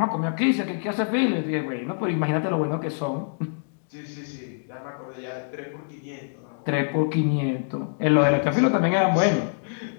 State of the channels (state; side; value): silent; right; 62 dB below the other